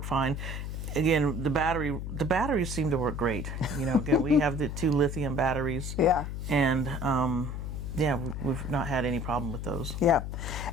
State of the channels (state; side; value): noise; left; hum, 5 dB below the sound